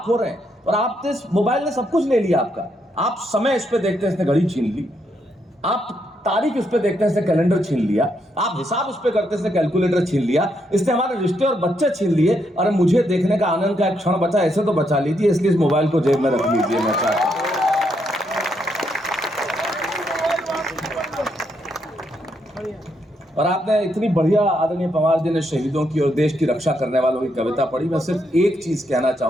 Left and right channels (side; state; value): both; normal; correlation 0.77